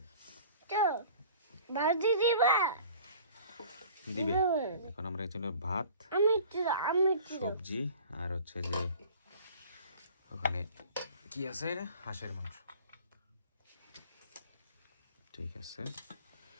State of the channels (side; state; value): both; inverted; correlation -0.46